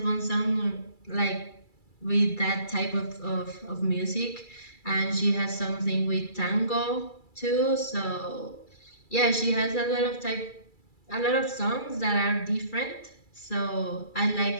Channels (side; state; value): right; late; 2.3 ms